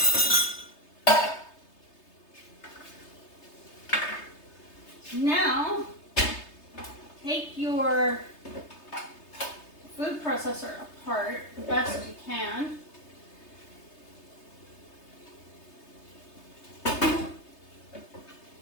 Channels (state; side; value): late; right; 3.3 ms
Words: Now, take your food processor apart the best you can.